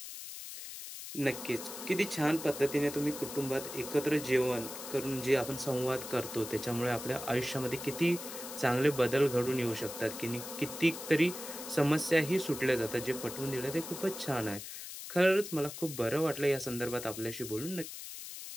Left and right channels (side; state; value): left; noise; hiss, 10 dB below the sound